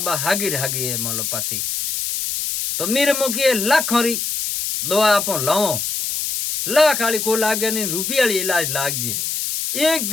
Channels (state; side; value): noise; left; hiss, 2 dB below the sound